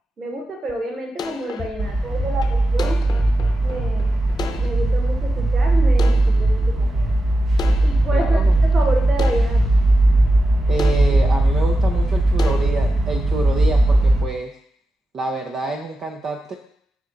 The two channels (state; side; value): normal; both; correlation 0.91